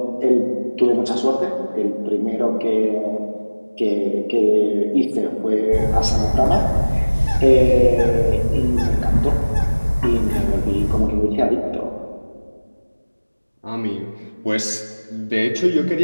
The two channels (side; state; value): both; inverted; correlation -1.00